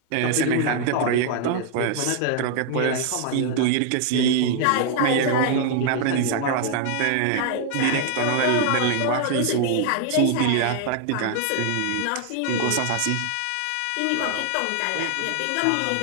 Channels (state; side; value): different; both; correlation 0.00